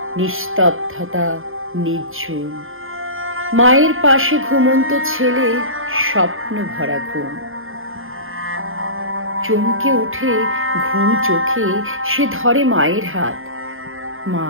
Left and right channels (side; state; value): left; late; 0.60 ms